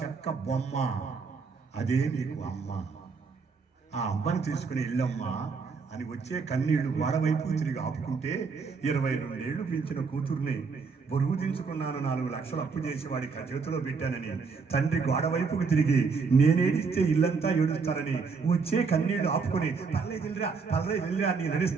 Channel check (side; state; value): left; quieter; 5.0 dB